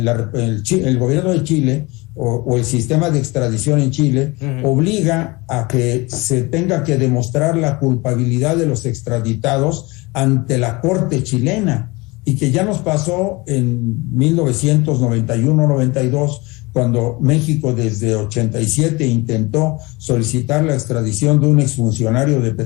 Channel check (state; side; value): quieter; right; 24.3 dB